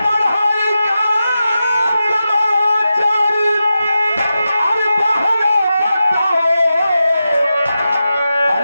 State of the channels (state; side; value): inverted; both; correlation -0.91